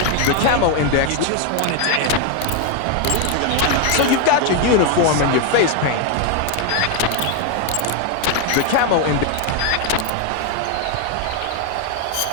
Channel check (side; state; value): both; different; correlation 0.01